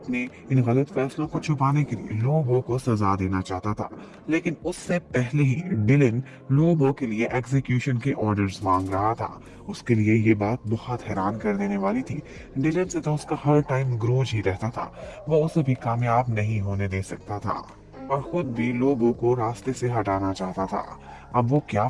इन गलत फैसलों को छुपाने के लिए लोबो को सजा देना चाहता था। लेकिन उससे पहले ही डिलिन लोबो के लिए एग्जीक्यूशन के ऑर्डर्स मांग रहा था। उसके लिए ये बात बहुत हैरान कर देने वाली थी। डिलन से तो उसका हर टाइम ग्रोज ही रहता था। वो उसे भी कामयाब नहीं होने दे सकता था और खुद भी लोगों को रास्ते से हटाना चाहता था। अब वो क्या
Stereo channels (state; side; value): identical; both; correlation 1.00